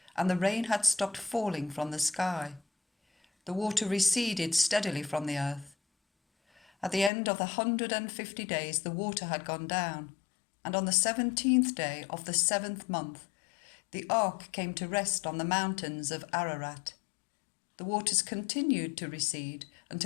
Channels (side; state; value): right; drops out; at 7.1 s